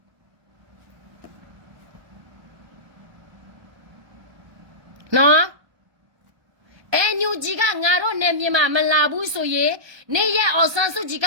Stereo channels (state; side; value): late; left; 1.3 ms